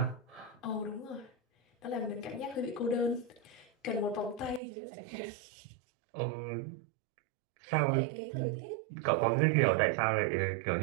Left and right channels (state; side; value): drops out; left; at 4.6 s